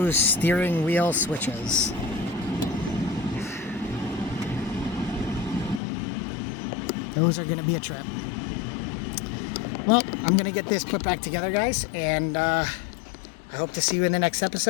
steering wheel switches. Those are going to be a trip. Well, I'm going to get this put back together, guys, and I hope to see you in the next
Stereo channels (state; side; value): drops out; right; at 5.8 s